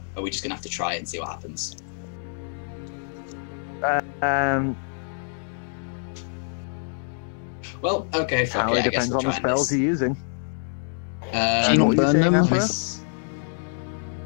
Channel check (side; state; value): right; silent; digital silence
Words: are we just gonna have to try it and see what happens? Well, okay, fuck It it. I guess depends we'll on the try spells this. you're using. Do you what not were you burn saying, them? Afro?